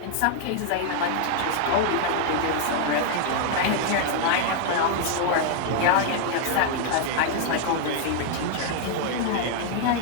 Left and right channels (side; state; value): both; different; correlation 0.00